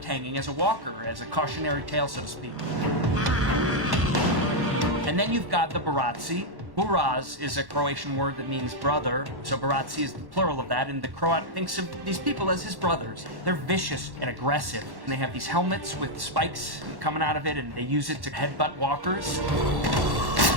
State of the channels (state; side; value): late; left; 1.1 ms